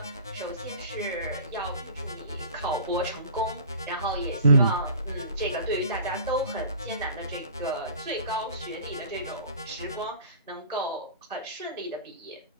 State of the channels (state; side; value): inverted; both; correlation -0.42